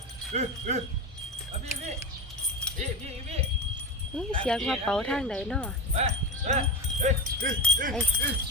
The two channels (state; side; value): normal; both; correlation 0.21